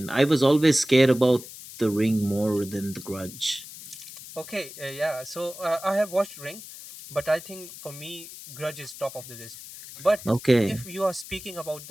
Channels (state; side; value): noise; left; hiss, 14 dB below the sound